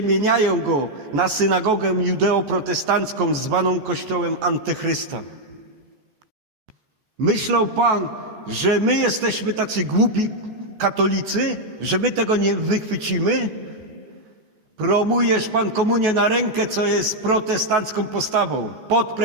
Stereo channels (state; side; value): late; left; 14 ms